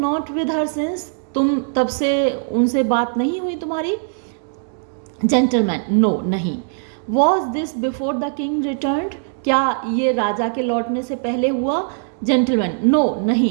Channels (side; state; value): left; silent; digital silence